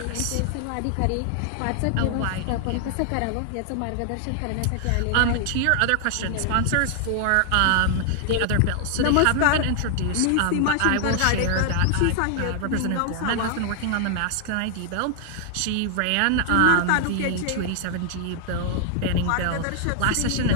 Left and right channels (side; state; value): both; different; correlation 0.00